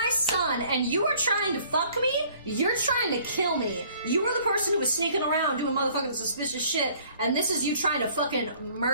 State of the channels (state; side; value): inverted; both; correlation -0.56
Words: son, and you are trying to fuck me? You're trying to kill me. You were the person who was sneaking around doing motherfucking suspicious shit, and this is you trying to fucking